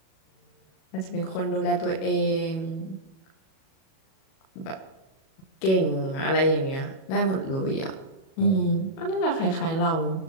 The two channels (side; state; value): right; late; 37 ms